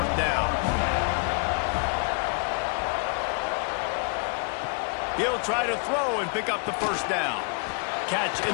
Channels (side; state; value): right; quieter; 39.8 dB